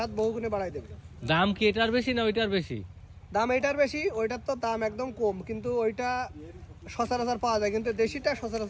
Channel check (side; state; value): both; identical; correlation 1.00